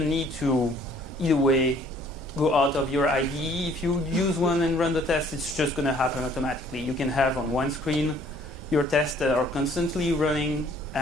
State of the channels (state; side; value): normal; both; correlation 0.58